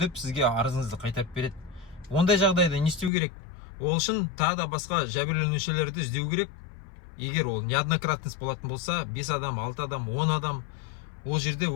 сізге арызыңызды қайтарып береді. Ондай жағдайда не істеу керек? Ол үшін тағы да басқа жәбірленушілерді іздеу керек. Егер ол неоднократность болатын болса, 5 адам, 6 адам, 10 адам, ол жерде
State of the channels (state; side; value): drops out; right; at 3.1 s